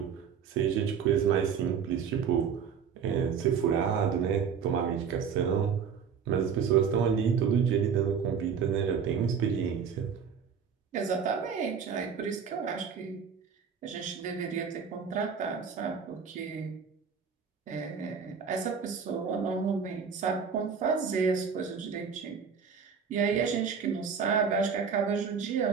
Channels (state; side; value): quieter; left; 6.7 dB